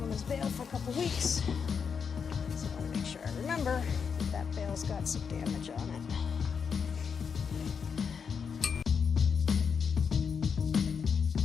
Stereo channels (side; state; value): right; quieter; 6.4 dB